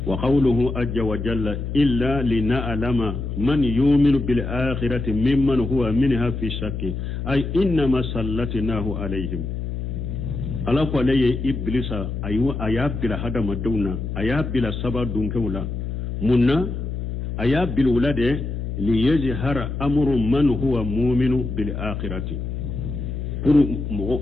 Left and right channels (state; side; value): noise; left; hum, 4 dB below the sound